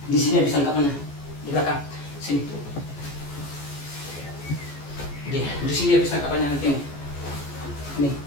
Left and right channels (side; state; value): right; late; 14 ms